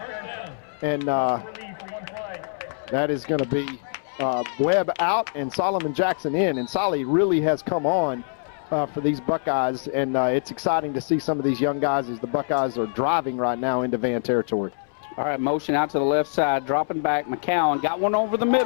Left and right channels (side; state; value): right; silent; 62 dB below the other